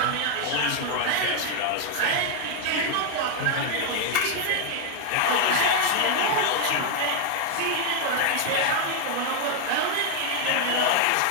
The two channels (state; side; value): different; both; correlation 0.01